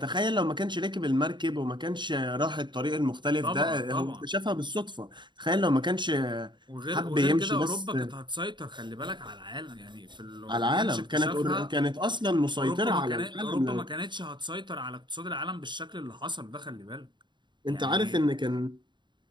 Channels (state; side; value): late; left; 0.22 ms